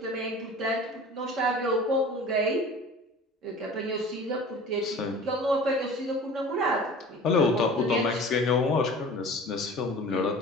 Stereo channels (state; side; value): normal; both; correlation 0.41